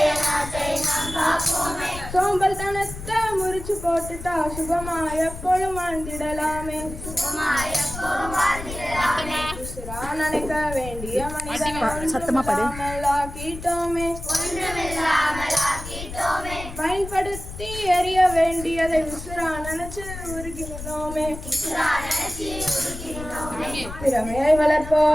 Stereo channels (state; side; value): noise; left; rumble, 10 dB below the sound